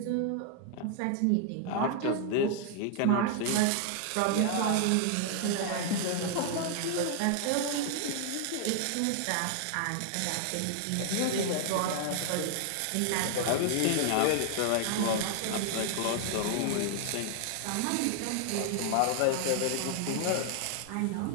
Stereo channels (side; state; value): both; different; correlation 0.00